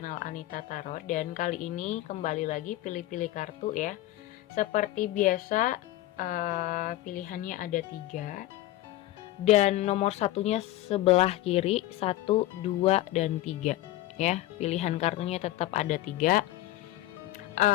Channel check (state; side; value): quieter; right; 15.5 dB